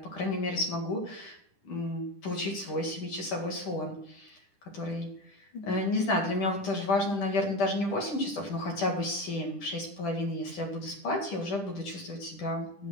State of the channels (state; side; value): late; right; 10 ms